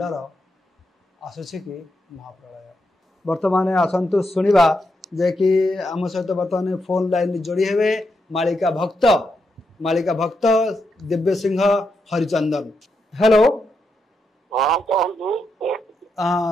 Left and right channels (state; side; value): normal; both; correlation 0.83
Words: आसूसी कि महाप्रलय बर्तमान आसतु शुणा जे कि आम सहित बर्तमान फोन लाइन जोड़ी हे मालिका भक्त दिव्य सिंह हरिचंदन। हेलो